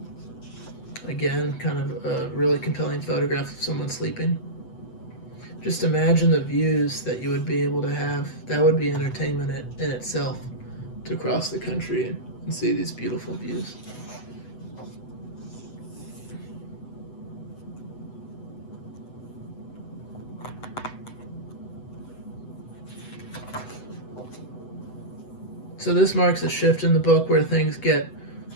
Again, kind of a really compelling photograph of someone sleeping. Just imagine the views that you would be able to have. That would be entertainment in itself, to cross the country and see these beautiful views. So this marks a shift in the book where things get,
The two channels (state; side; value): late; right; 8.0 ms